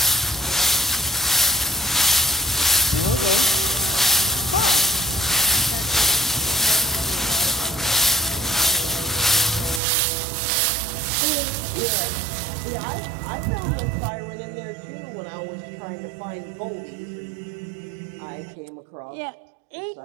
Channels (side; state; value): left; drops out; at 9.8 s